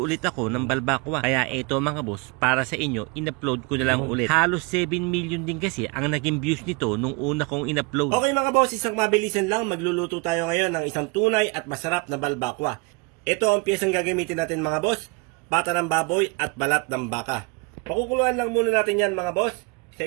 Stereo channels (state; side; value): quieter; left; 28.8 dB